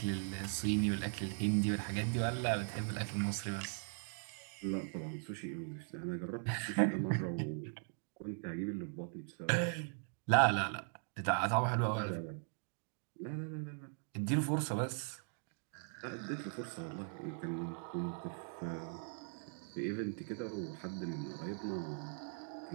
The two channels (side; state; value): left; silent; 51 dB below the other